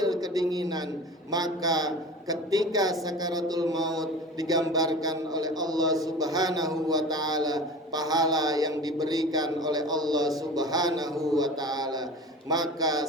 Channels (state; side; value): normal; both; correlation 0.36